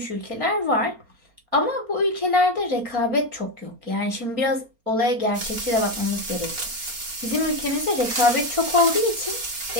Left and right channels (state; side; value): late; left; 4.3 ms